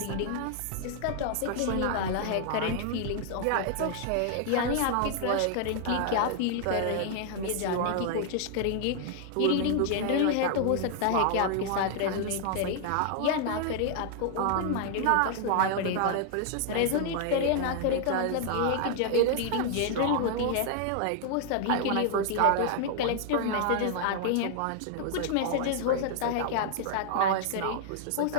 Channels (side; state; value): both; different; correlation 0.00